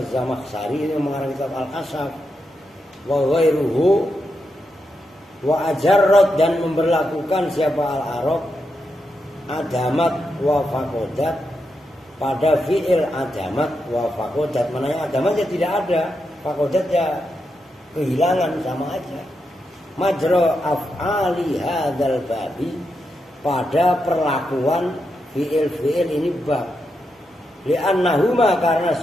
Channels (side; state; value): both; normal; correlation 0.85